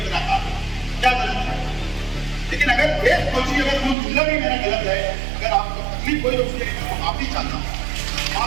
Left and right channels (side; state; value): left; drops out; at 4.0 s